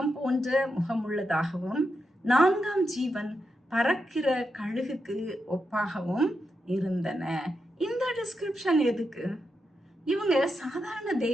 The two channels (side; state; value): both; normal; correlation 0.86